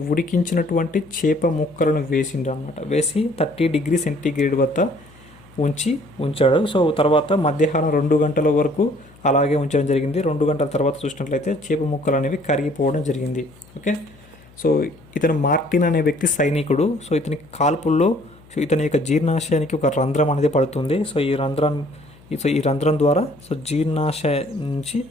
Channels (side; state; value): left; noise; hum, 26 dB below the sound